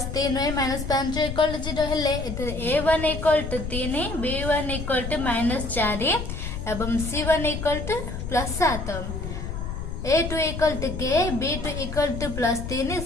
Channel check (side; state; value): left; noise; rumble, 6 dB below the sound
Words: 3y minus 5 equal to 0 हेले a1 equal to 3 b1 equal to minus 4 एवं c1 equal to plus 7 a2 equal to k b2 equal to plus 3